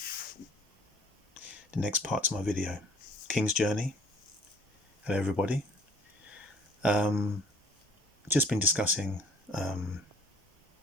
The next part to my video. King's Journey. Hello everybody. Just been discussing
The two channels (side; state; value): both; normal; correlation 0.55